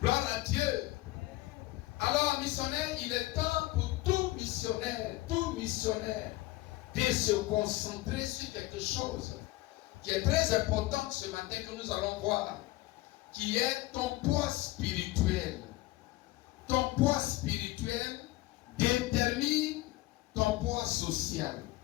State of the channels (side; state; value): right; quieter; 18.9 dB